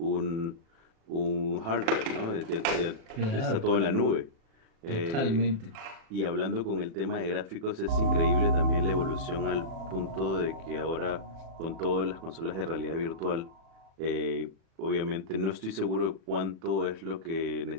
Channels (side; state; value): left; late; 36 ms